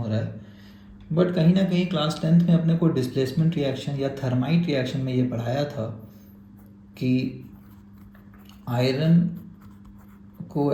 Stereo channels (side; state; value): both; identical; correlation 1.00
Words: रहा है। बट कहीं ना कहीं क्लास 10th में अपने को डिस्प्लेसमेंट रिएक्शन या थर्माइट रिएक्शन में ये पढ़ाया था कि आयरन को